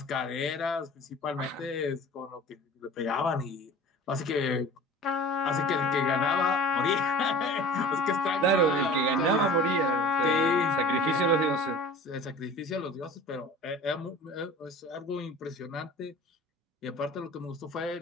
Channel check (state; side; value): normal; both; correlation 0.41